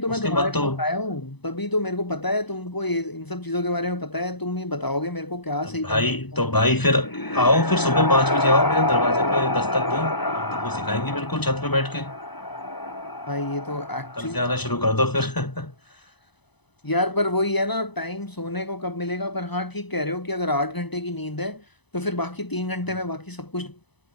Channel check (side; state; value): right; late; 0.99 ms